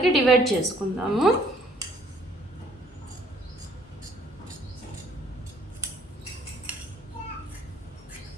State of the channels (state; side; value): normal; both; correlation 0.61